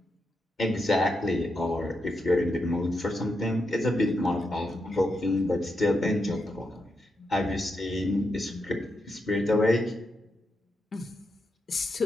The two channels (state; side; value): normal; both; correlation 0.84